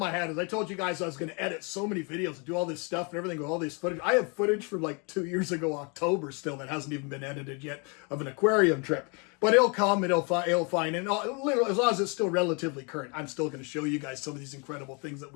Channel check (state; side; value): quieter; right; 33.2 dB